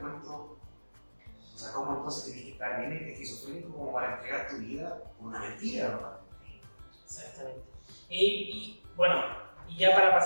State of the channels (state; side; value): inverted; both; correlation -1.00